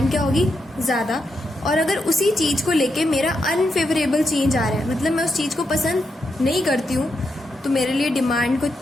क्या होगी, ज़्यादा. और अगर उसी चीज़ को लेके मेरा अनफेवरेबल चेंज आ रहा है, मतलब मैं उस चीज़ को पसंद नहीं करती हूँ, तो मेरे लिए डिमांड को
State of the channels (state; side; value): normal; both; correlation 0.83